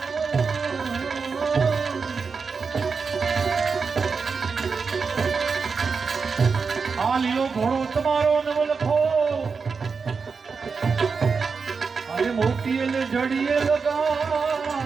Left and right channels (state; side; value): quieter; left; 5.1 dB